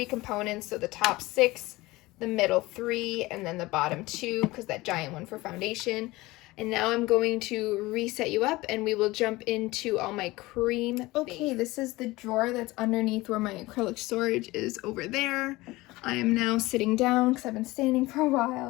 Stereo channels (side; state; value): right; quieter; 20.1 dB